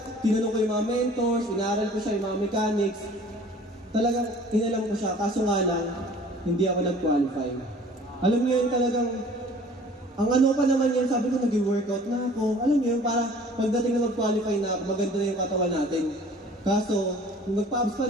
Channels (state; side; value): normal; both; correlation 0.50